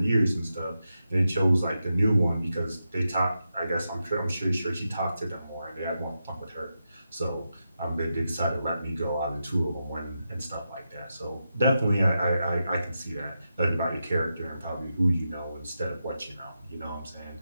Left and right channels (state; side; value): inverted; both; correlation -0.88